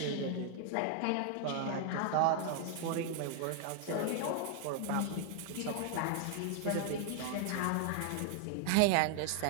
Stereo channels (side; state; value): both; different; correlation 0.00